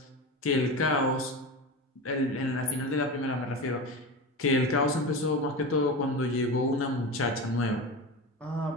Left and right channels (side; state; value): both; normal; correlation 0.25